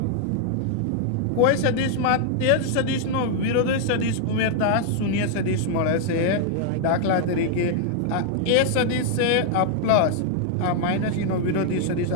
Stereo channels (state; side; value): different; both; correlation 0.00